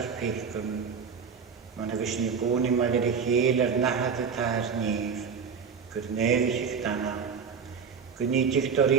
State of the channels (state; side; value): quieter; left; 6.2 dB